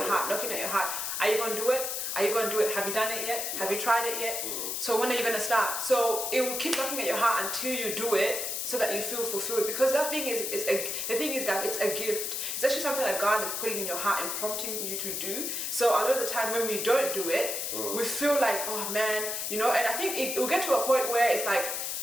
heart, knocking at your heart. Are you going to do it? Are you going to do it? Have you done it yet? Have you tried it yet? So when are you going to start? So it will keep knocking at your heart until you do it, so that you feel fulfilled. Because that thing is the thing is that it's a gift. It's actually something that God is putting in your heart and prompting you to do. So a lot of the time when we don't do it, we feel like, oh man, and I think it will get to a point where it's like,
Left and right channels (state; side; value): noise; left; hiss, 2 dB below the sound